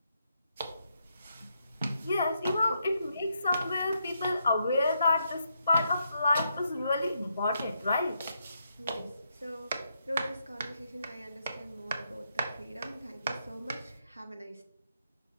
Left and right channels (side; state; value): both; inverted; correlation -0.79